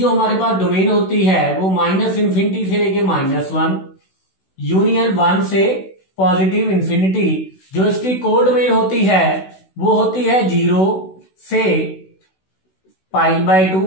हमारे पास डोमेन होती है वो -इन्फिनिटी से लेके -1 यूनियन 1 से पॉजिटिव इन्फिनिटी। जो इसकी कोड डोमेन होती है वो होती है 0 से पाई/2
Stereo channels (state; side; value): late; right; 16 ms